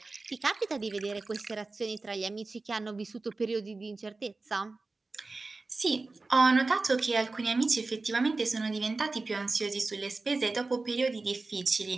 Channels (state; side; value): quieter; left; 3.6 dB